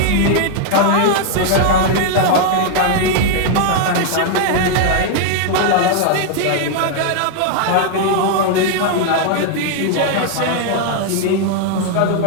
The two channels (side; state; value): both; different; correlation 0.00